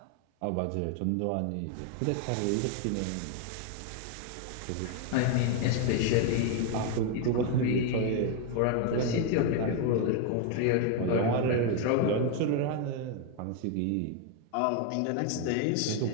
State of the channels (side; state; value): both; different; correlation 0.01